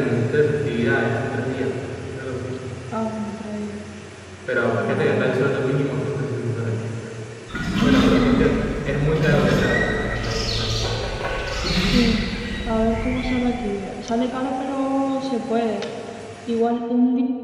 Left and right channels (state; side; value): identical; both; correlation 1.00